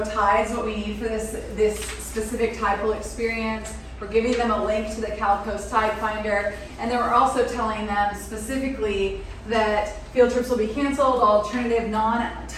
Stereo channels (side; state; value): both; identical; correlation 1.00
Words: tides, what we need for this specific tide pool experience. We're giving them a link to the Cal Coast Tide Finder, and then we're also telling them specifically that field trips will be canceled, alternative